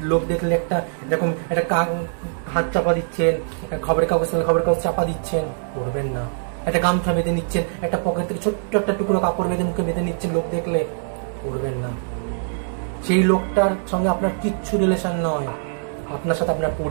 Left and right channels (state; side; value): silent; left; digital silence